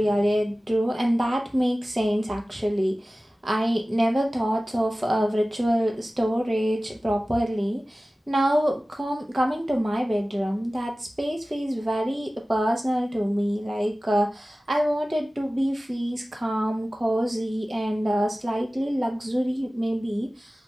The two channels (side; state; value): both; normal; correlation 0.97